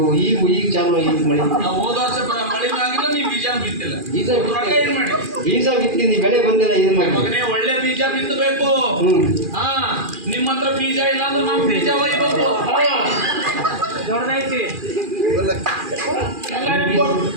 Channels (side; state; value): left; late; 2.4 ms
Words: ಈಗ ಚಾಲು ಈಗ ಮಳೆ. ಹೋದ ವರ್ಷ ಮಳೆನೂ ಆಗಿಲ್ಲ, ನೀವು ಬೀಜ ಬಿತ್ತಿಲ್ಲ. ಬೀಜ ಬಿತ್ತೀನಿ, ಬೆಳೆ ಬಂದಿಲ್ಲ. ಇದು ಮಾಡಿ ಮಗನೇ, ಒಳ್ಳೆ ಬೀಜ ಬಿತ್ತಬೇಕು. ನಿಮ್ಮ ಹತ್ರ ಬೀಜ ಇಲ್ಲ ಅಂದ್ರೆ ನಾವು ಬೀಜ ಒಯ್ಬೇಕು. ದೊಡ್ಡದೈತಿ